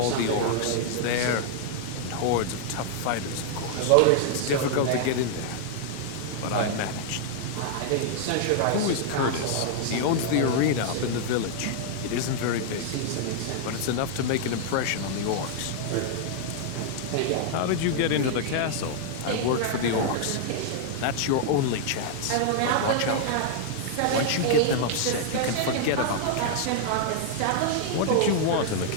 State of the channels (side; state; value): both; different; correlation -0.01